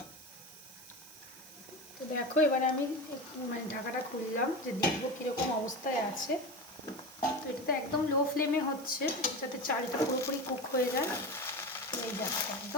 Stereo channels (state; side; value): noise; right; hiss, 18 dB below the sound